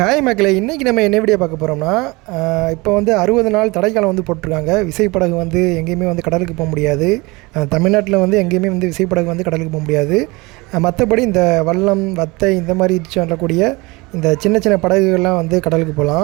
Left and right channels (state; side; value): quieter; left; 24.1 dB